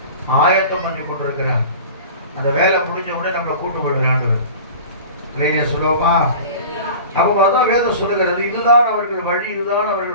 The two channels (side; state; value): both; inverted; correlation -0.38